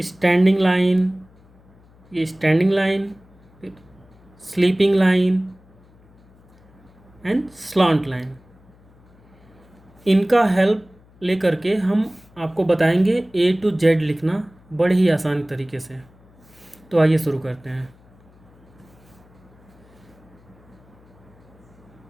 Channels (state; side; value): noise; left; hum, 28 dB below the sound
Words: लाइन, ये स्टैंडिंग लाइन, फिर स्लीपिंग लाइन एंड स्लॉन्ट लाइन। इनका हेल्प लेकर के हम आपको बताएंगे A to Z लिखना बड़े ही आसान तरीके से। तो आइए शुरू करते हैं।